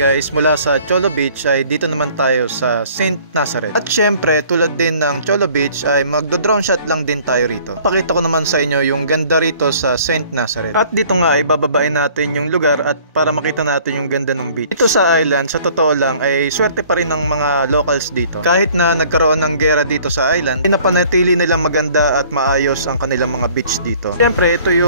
mula sa Cholo Beach ay dito naman tayo sa St. Nazareth. At syempre, tulad din ng Cholo Beach ay magdo-drone shot lang din tayo rito. Pakita ko naman sa inyo yung ganda rito sa St. Nazareth. At dito nga ay bababain natin yung lugar at para makita natin yung ganda ng beach. Dito sa island, sa totoo lang ay swerte pa rin ng mga locals dito. Kahit na nagkaroon ng gera dito sa island, pinapanatili nilang maganda at maayos ang kanilang mga beach dito. Syempre, ito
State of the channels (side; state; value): both; inverted; correlation -0.54